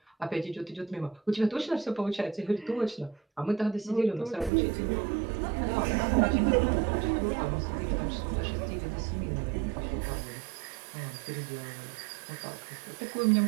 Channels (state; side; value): drops out; left; at 4.5 s